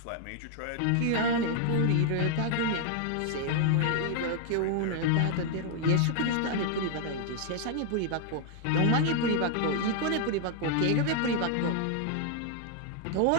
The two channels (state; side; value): different; both; correlation 0.00